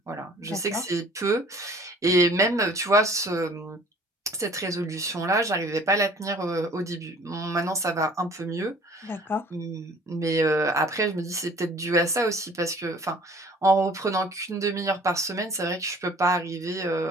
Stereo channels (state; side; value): normal; both; correlation 0.52